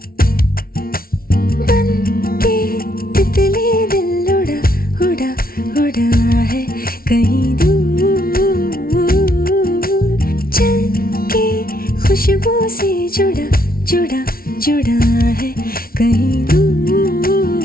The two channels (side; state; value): right; late; 0.43 ms